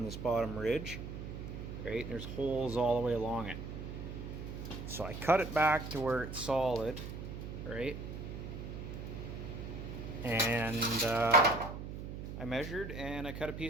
this bottom ridge, right? And there's holes all the way along it. So I cut it back to where it's solid, right? And I measured and I cut a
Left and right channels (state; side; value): noise; right; hum, 8 dB below the sound